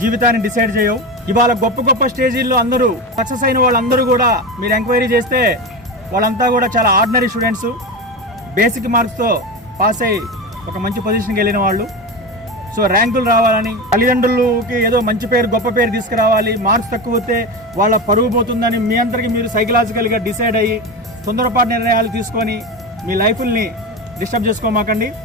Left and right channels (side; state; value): both; normal; correlation 0.21